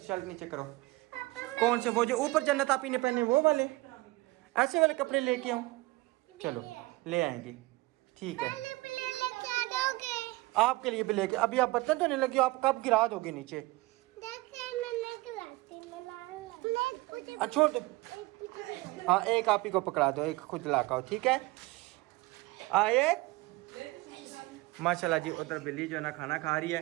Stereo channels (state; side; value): quieter; left; 21.5 dB